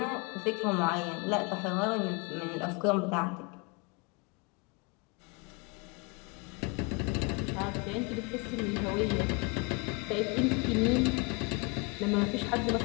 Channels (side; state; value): right; quieter; 30.5 dB